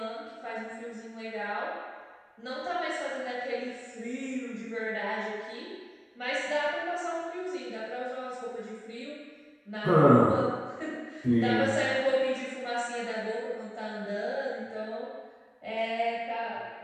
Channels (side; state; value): both; identical; correlation 1.00